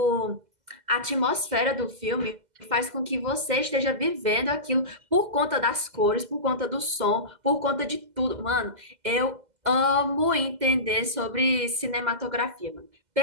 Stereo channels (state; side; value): late; left; 2.0 ms